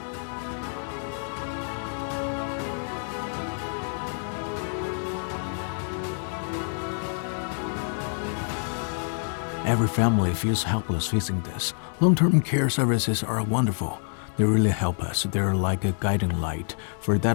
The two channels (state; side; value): silent; right; 60 dB below the other